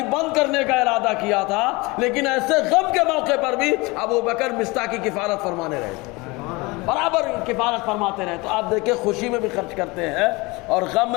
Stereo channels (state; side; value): quieter; right; 24.5 dB